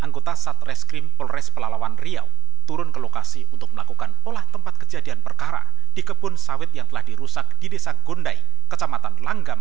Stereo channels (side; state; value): left; quieter; 10.3 dB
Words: Satreskrim Polres Pelalawan Riau turun ke lokasi untuk melakukan olah tempat kejadian perkara di kebun sawit yang telah dirusak di Desa Gondai, Kecamatan